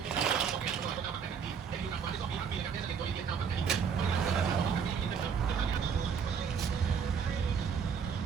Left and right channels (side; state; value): left; quieter; 6.7 dB